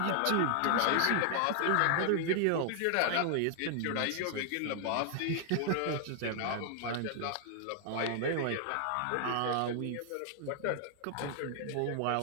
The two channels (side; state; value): both; different; correlation 0.00